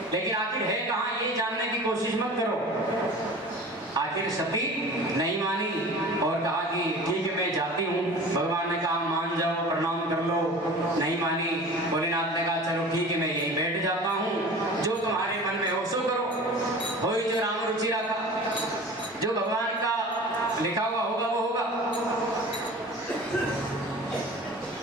लेकिन आखिर है कहाँ ये जानने की कोशिश मत करो। आखिर सती नहीं मानी और कहा कि ठीक है मैं जाती हूँ। भगवान ने कहा मान जाओ, प्रणाम कर लो, नहीं मानी। भोलेनाथ ने कहा चलो ठीक है मैं यहीं बैठ जाता हूँ, जो तुम्हारे मन में हो सो करो, हो ही जो राम रुचि रखा, जो भगवान का लिखा हुआ होगा वो होगा।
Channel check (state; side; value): normal; both; correlation 0.39